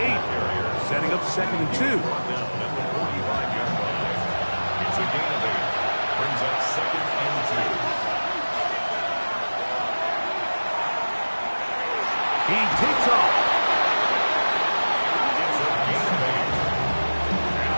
Setting up 2nd and 2. It's a gain of 8. Brings up 2nd and 2. He takes off. It's a gain of 8. And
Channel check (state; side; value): inverted; both; correlation -1.00